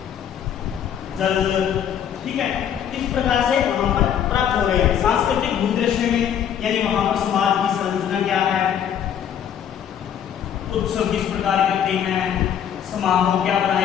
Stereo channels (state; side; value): quieter; right; 9.1 dB